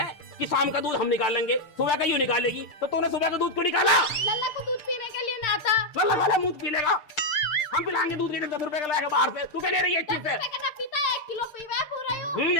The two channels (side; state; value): right; late; 6.7 ms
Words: कि शाम का दूध हम निकालेंगे, सुबह का यूं निकालेगी, तो तूने सुबह का दूध क्यों निकाला? लल्ला को दूध पीने के लिए ना आता। लल्ला वाला मुंह पी लेगा। हम पिलाएंगे दूध के 10 रुपए का लाएगा बाहर से। तू क्या ले रही है इस चीज से? ना पीता है, 1 किलो पीवा पूरा यूं।